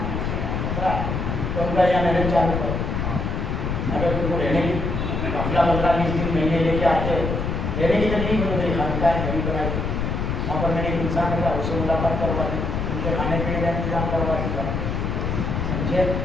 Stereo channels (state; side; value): noise; left; rumble, 2 dB below the sound